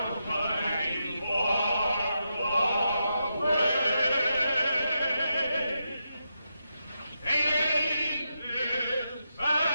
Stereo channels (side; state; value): both; inverted; correlation -0.85